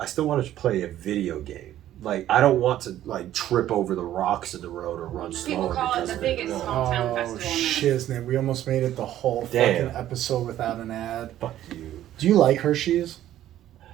I still want to play a video game. Like I don't want to like trip over the rocks in the road or run People slower call it because the of biggest it. small town Oh, festival. shiznit. We almost made it the whole Damn. fucking episode without an ad. Fuck you. Do you like Hershey's?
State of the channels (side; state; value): left; quieter; 12.6 dB